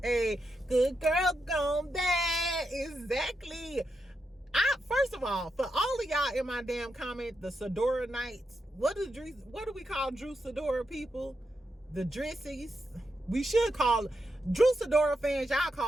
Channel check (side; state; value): both; normal; correlation 0.85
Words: Hey, Good Girl Gone Bad. Exactly. First of all, for all of y'all in my damn comment, the Sidora Knights, what do we call Drew Sidora people? The Drissies. We should call Drew Sidora fans, y'all